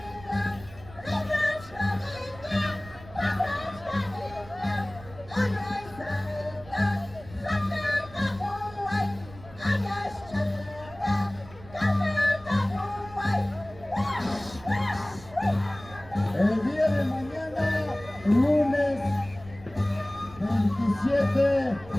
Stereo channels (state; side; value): noise; right; rumble, 19 dB below the sound